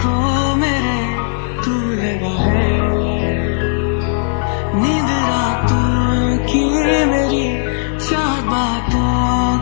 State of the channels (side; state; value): right; silent; digital silence